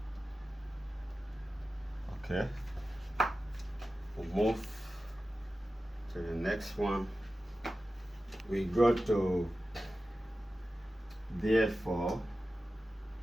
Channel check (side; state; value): both; normal; correlation 0.94